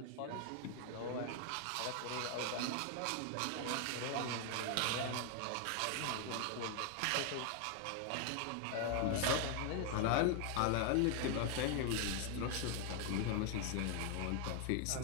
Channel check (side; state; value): both; different; correlation 0.00